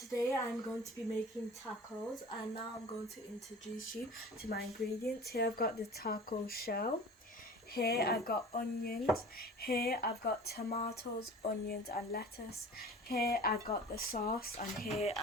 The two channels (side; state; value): both; normal; correlation 0.40